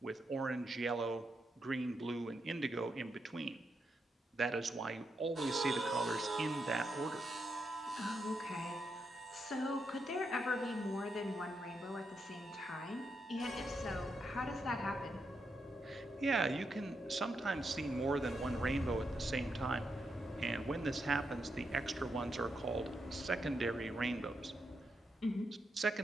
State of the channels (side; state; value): both; normal; correlation 0.83